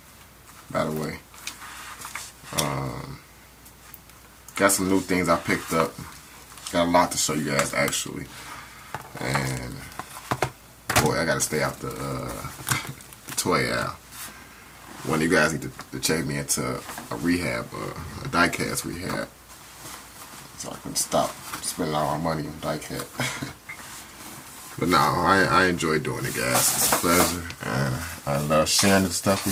by the way. Got some new things I picked up. Got a lot to show you guys, actually. And, boy, I gotta stay out the toy aisle. One of you guys need to check me into a rehab, a diecast rehab, so I can stop spending all my money on diecast. But no, I enjoy doing it, guys. It's a pleasure, and I love sharing this stuff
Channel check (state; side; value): identical; both; correlation 1.00